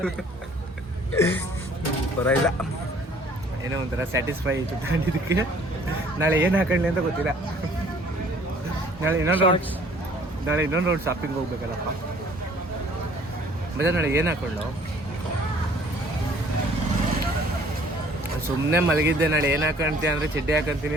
ಪರವಾಗಿಲ್ಲ. ಏನೋ ಒಂಥರ ಸ್ಯಾಟಿಸ್ಫೈ ಆಯಿತು ತಗೊಂಡಿದ್ದಕ್ಕೆ. ನಾಳೆ ಏನು ಹಾಕೊಳ್ಳಿ ಅಂತ ಗೊತ್ತಿಲ್ಲ. ನಾಳೆ ಇನ್ನೊಂದು ರೌಂಡ್ ಶಾಪಿಂಗ್ ಹೋಗ್ಬೇಕಲ್ಲಪ್ಪ. ಮತ್ತೆ ನಾಳೆ ಏನು ಹಾಕೊಂಡು ಸುಮ್ಮನೆ ಮಲಗಿದ್ದೆ. ನಾಳೆ ಏನು ಹಾಕೊಂತೀಯ ಅಂದರೆ ಚಡ್ಡಿ ಹಾಕೊಂತೀನಿ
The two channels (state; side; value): normal; both; correlation 0.56